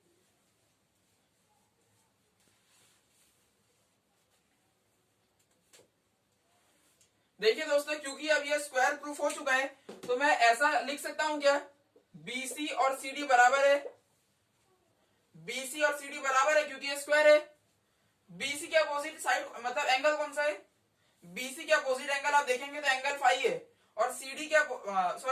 देखिए दोस्तों, क्योंकि अब ये स्क्वायर प्रूफ हो चुका है, तो मैं ऐसा लिख सकता हूं क्या, बीसी और सीडी बराबर है। बीसी और सीडी बराबर है क्योंकि ये स्क्वायर है। बीसी के अपोजिट साइड मतलब एंगल कौन सा है, बीसी के अपोजिट एंगल आप देखेंगे तो एंगल 5 है, और सीडी के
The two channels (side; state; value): both; identical; correlation 1.00